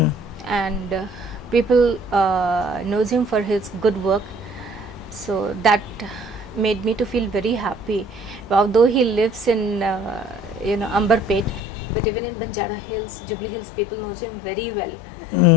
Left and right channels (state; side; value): drops out; right; at 11.6 s